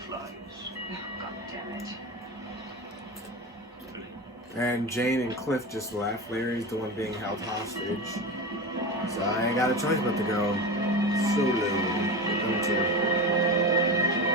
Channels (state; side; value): normal; both; correlation 0.24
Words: Oh, God damn it. And Jane and Cliff just left. Larry's the one being held hostage. So I ain't got a choice but to go solo with them two.